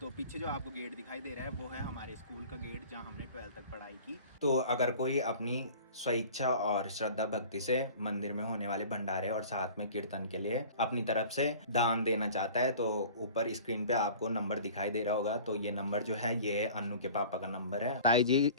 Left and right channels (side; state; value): both; inverted; correlation -0.43